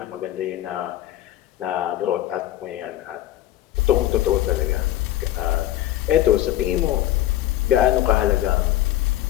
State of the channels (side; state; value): right; quieter; 13.8 dB